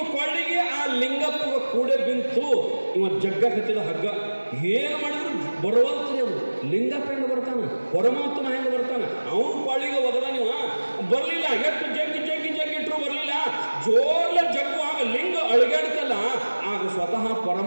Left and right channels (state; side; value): inverted; both; correlation -1.00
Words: ಕೊಳ್ಳಿಗೆ ಆ ಲಿಂಗಪ್ಪ ಕೂಡ ಬಿಂತು. ಇವ ಜಗ್ಗ ಕತ್ತಿದ ಹಗ್ಗ. ಏನು ಮಾಡಿದ್ರು ಬರುವಂತ್ರಿ ಅವನು. ಲಿಂಗಪ್ಪ ಹೆಂಗೆ ಬರ್ತಾನ, ಪರಮಾತ್ಮ ಹೆಂಗೆ ಬರ್ತಾನ, ಅವನು ಕೊಳ್ಳಿಗೆ ಒಗದ ನೀವು ಬರಲಿಲ್ಲ. ಎಷ್ಟು ಜಗ್ಗಿಟ್ರು ಬರಲಿಲ್ಲ. ಜೋರ್ಲ ಜಗ್ಗು ಆಗ ಲಿಂಗ ಅಳಗಾಡ್ತಲ್ಲ, ಆಗ ಸ್ವತಃ